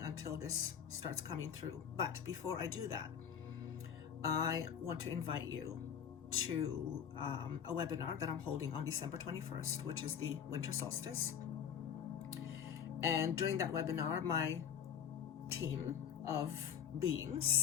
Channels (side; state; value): right; quieter; 8.2 dB